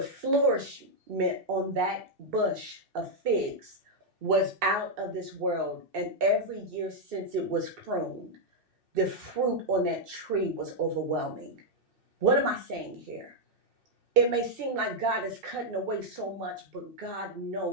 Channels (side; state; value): left; late; 2.6 ms